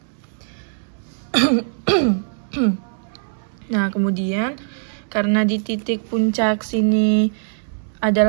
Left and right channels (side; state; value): left; silent; 65 dB below the other